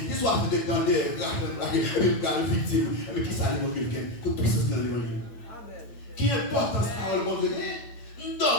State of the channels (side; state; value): right; late; 8.9 ms